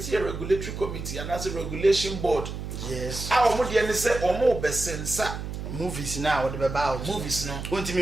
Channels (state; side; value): noise; right; hum, 7 dB below the sound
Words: a regulatory committee and as a regulation board. Yes. Our modi any say omo besensa movies now what about movies no want